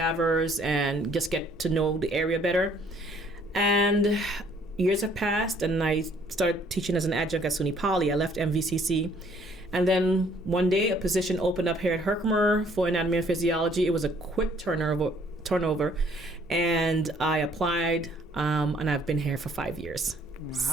and just get to know the area better. And years have passed, and I started teaching as an adjunct at SUNY Poly. I left MVCC. And then one day, a position opened up here at Herkimer for anatomy and physiology. It was a quick turnover. And I applied, and I've been here for 5 years. Wow.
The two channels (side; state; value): both; normal; correlation 0.61